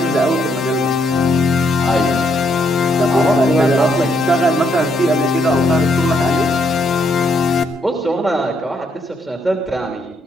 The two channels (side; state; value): both; normal; correlation 0.74